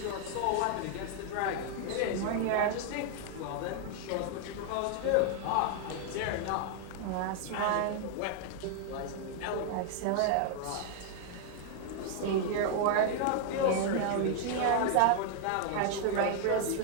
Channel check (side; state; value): both; different; correlation 0.00